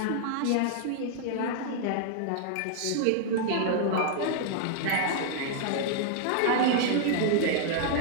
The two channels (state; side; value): different; both; correlation -0.01